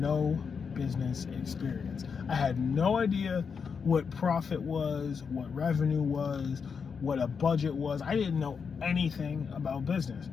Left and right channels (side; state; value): right; quieter; 6.0 dB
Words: business experience. I had no idea what profit was, what revenue was, what a budget was. I didn't know anything about business.